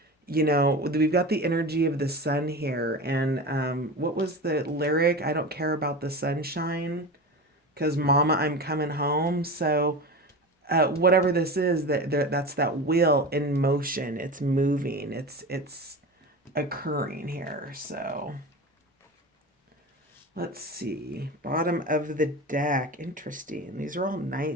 we've got the energy of the sun here. And what was the lyric? I don't care about the sunshine because mama, I'm coming home. So whatever this is, that's that wheel in motion. It's moving. It's occurring here. So let's see. Bottom of the deck. Interesting. These are all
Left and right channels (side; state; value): both; normal; correlation 0.28